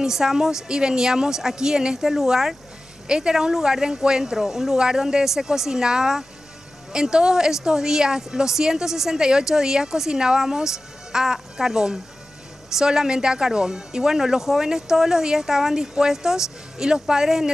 y veníamos aquí en este lugar. Este era un lugar de encuentro, un lugar donde se cocinaba. En todos estos días, los 168 días, cocinábamos a carbón, solamente a carbón. Y bueno, los jóvenes todos los días estaban dispuestos y los padres en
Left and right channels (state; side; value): normal; both; correlation 0.96